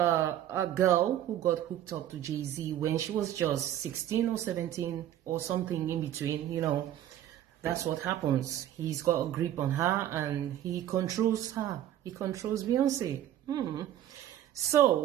girl who got hooked up to Jay-Z when she was just 16 or 17 or something in between, you know? That's what happens. He's got a grip on her and he controls her. He controls Beyonce.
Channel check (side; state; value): left; quieter; 11.8 dB